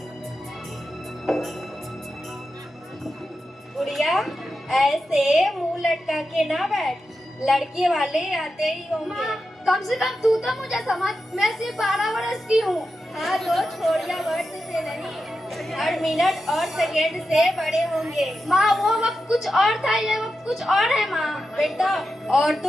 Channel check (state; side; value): normal; both; correlation 0.89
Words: गुड़िया, ऐसे मुंह लटका के ना बैठ, लड़के वाले आते ही होंगे। कम से कम तू तो मुझे समझ, मैं सिर्फ 12 वर्ष की हूँ। हाँ तो छोड़िया वर्ष से नहीं, हर मिनट और सेकेंड से बड़े होंगे। माँ वो वक्त कुछ और था, ये वक्त कुछ और है माँ। बेटा,